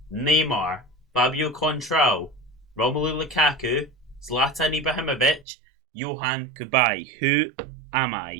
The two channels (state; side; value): drops out; left; at 5.5 s